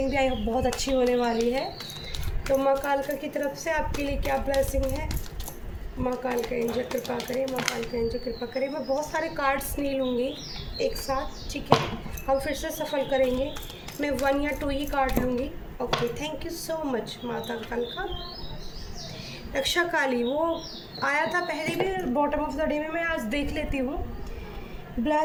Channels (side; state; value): both; identical; correlation 1.00